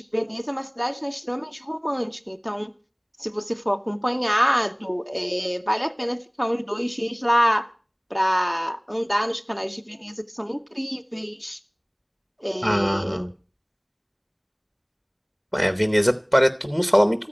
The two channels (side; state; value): both; identical; correlation 1.00